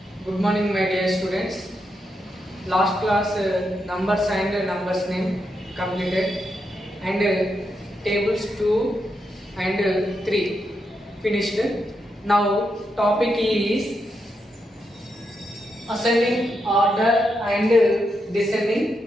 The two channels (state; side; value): normal; both; correlation 0.83